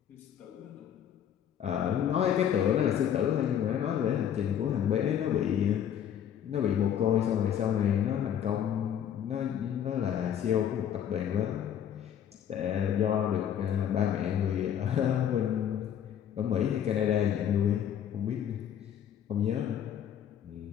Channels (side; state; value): right; quieter; 9.6 dB